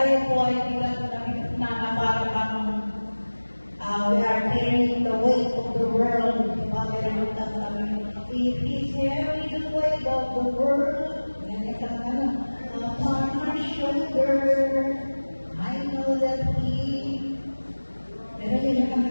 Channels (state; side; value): inverted; both; correlation -1.00